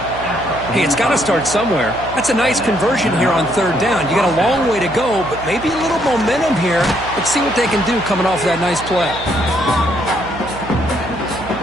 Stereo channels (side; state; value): right; noise; hum, 14 dB below the sound